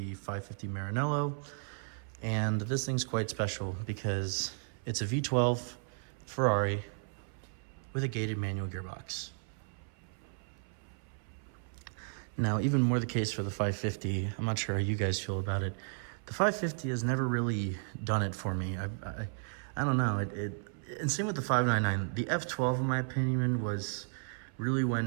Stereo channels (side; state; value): left; silent; 55 dB below the other